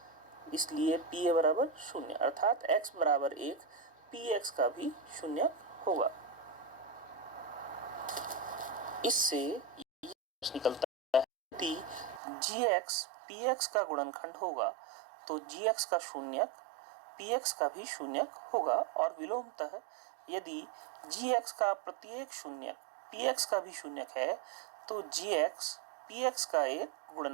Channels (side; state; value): left; drops out; at 12.2 s